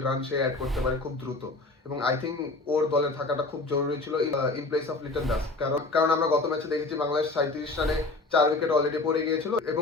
রান সে অ্যাড করতে পারে খুব দ্রুত এবং আই থিঙ্ক ওর দলে থাকাটা খুব জরুরি ছিল in place of Liton Das. কারণ আমরা গত ম্যাচে দেখেছি বাংলাদেশ 37 রানে 4 উইকেট অলরেডি পড়ে গিয়েছিল এবং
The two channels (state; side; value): quieter; right; 3.3 dB